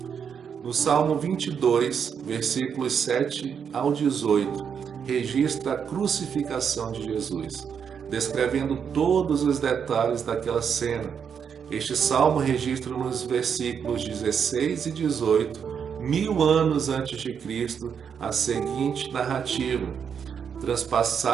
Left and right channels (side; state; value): left; quieter; 7.2 dB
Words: No Salmo 22, versículos 7 ao 18, registra a crucificação de Jesus, descrevendo todos os detalhes daquela cena. Este salmo registra nos versículos 16 e 18, 1000 anos antes de Cristo, a seguinte narrativa: